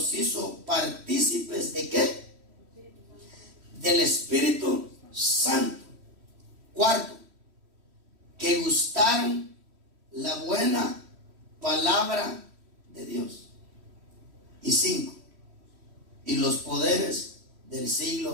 hizo partícipes de ¿qué? Del Espíritu Santo. Cuarto, que gustaron la buena palabra de Dios. Y cinco, y los poderes del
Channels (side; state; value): left; late; 3.1 ms